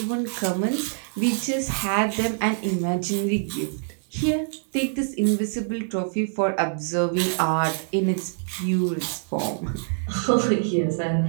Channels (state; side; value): silent; left; 62 dB below the other